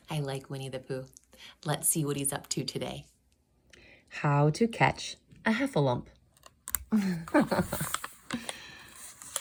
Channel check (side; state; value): both; identical; correlation 1.00